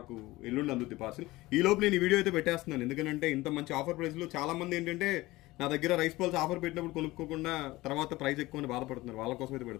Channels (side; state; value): right; quieter; 19.2 dB